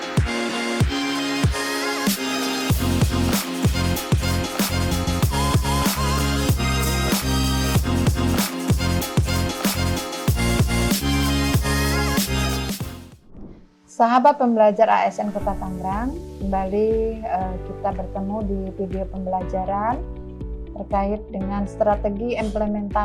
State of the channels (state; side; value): identical; both; correlation 1.00